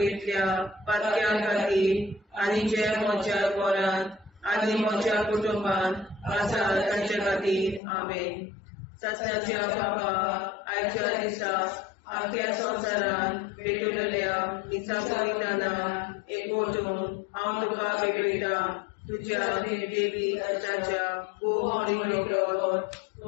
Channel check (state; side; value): drops out; right; at 7.8 s